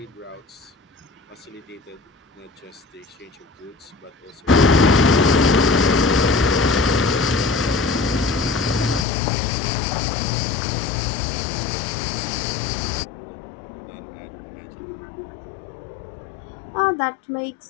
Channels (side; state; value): right; drops out; at 9.1 s